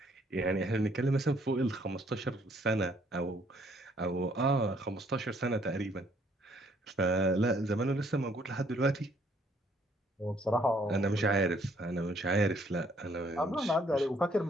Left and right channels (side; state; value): both; normal; correlation 0.65